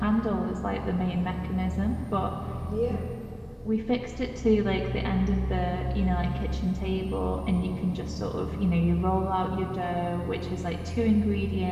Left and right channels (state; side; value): identical; both; correlation 1.00